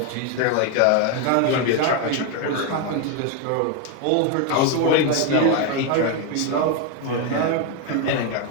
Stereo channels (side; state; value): both; different; correlation 0.01